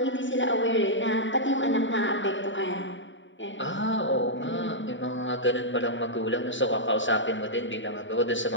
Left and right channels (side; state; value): right; late; 0.55 ms